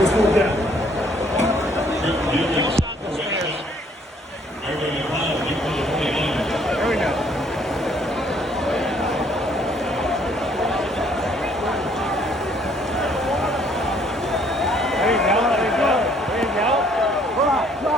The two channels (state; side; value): normal; both; correlation 0.63